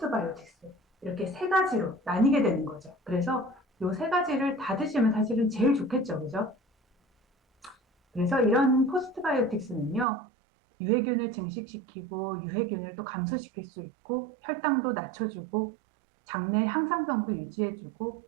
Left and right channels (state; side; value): drops out; left; at 10.1 s